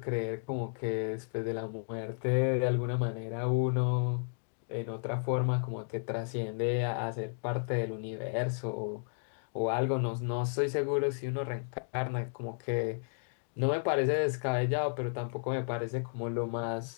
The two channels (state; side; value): silent; right; digital silence